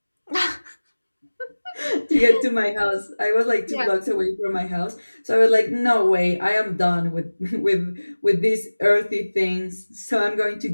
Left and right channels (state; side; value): inverted; both; correlation -1.00